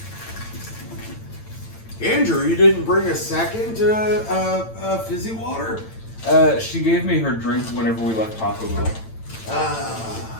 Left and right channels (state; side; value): late; right; 8.9 ms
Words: Andrew, you didn't bring a second fizzy water? She gave me her drink whenever we left Taco Bell.